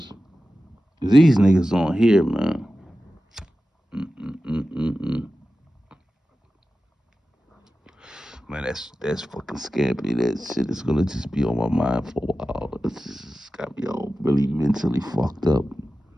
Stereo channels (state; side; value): normal; both; correlation 0.94